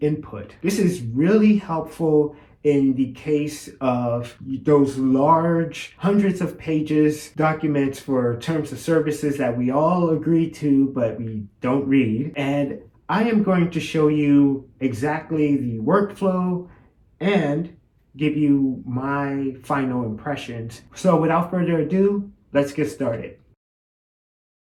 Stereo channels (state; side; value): identical; both; correlation 1.00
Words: input. This is really helpful in the case of those large hundreds of pages documents for terms of services that we all agree to but we don't read. And I am going to show you exactly the workflow and give you my final impressions. So without further ado, let's get started.